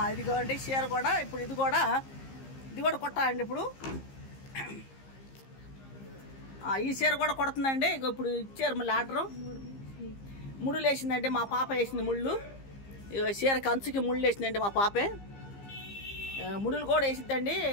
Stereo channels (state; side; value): late; right; 15 ms